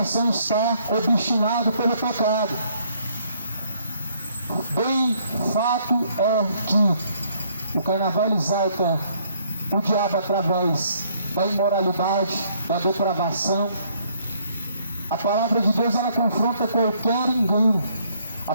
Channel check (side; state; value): both; inverted; correlation -0.66